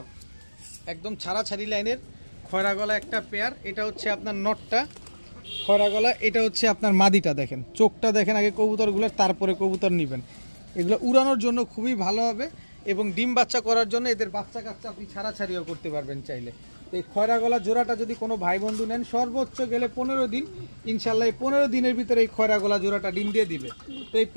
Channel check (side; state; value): both; inverted; correlation -1.00